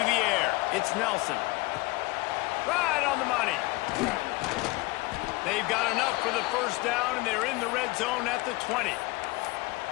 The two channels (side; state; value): right; quieter; 22.5 dB